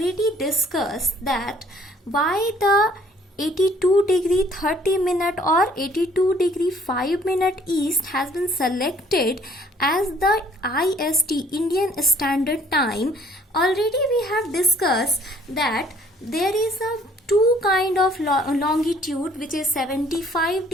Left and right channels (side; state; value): both; normal; correlation 0.59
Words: discussed that why the 82 degree 30 minute or 82 degree 5 minute east has been selected as the IST Indian Standard Time. Already we have discussed that there is a two kind of longitude which is 75